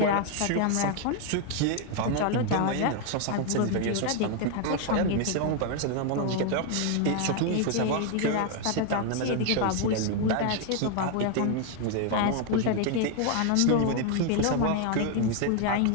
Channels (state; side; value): different; both; correlation 0.01